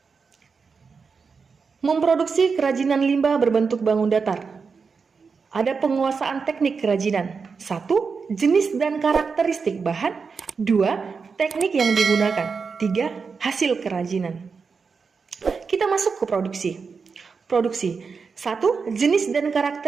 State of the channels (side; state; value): left; quieter; 5.2 dB